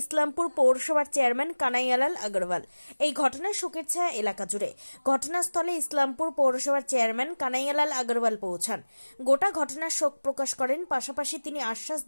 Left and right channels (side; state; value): both; inverted; correlation -1.00